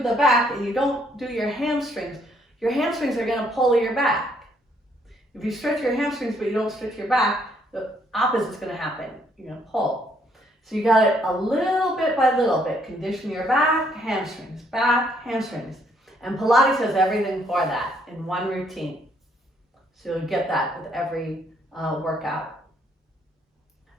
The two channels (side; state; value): both; normal; correlation 0.69